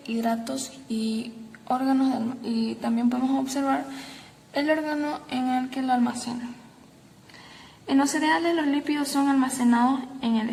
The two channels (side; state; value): both; identical; correlation 1.00